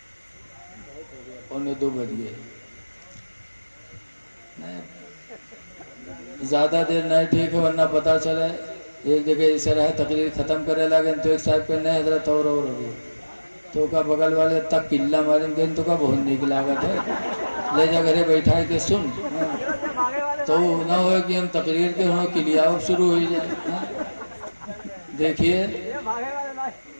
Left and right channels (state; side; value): inverted; both; correlation -1.00